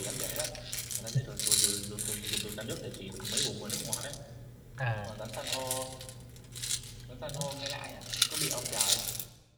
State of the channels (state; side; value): identical; both; correlation 1.00